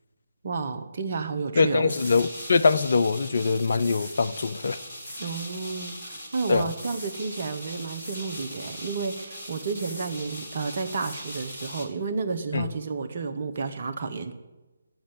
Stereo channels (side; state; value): both; inverted; correlation -0.81